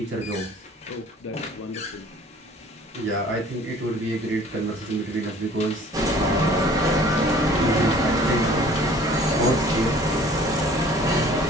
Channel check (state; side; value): normal; both; correlation 0.51